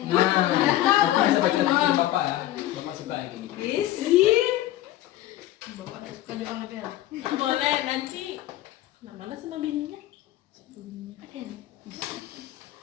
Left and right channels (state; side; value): quieter; right; 14.5 dB